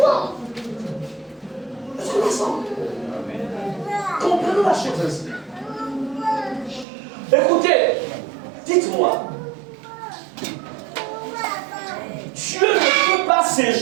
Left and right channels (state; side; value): drops out; left; at 6.9 s